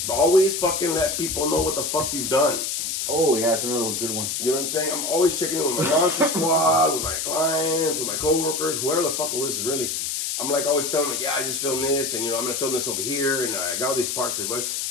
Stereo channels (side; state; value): left; noise; hiss, 2 dB below the sound